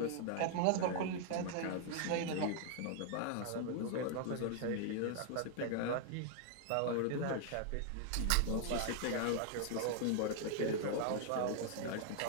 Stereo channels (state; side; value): different; both; correlation 0.00